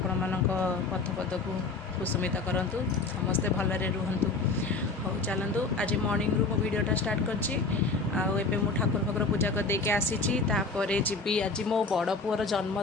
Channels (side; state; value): right; quieter; 3.9 dB